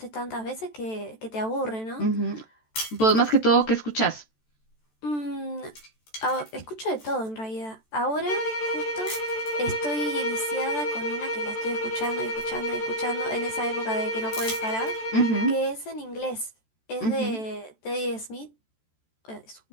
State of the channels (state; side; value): late; right; 14 ms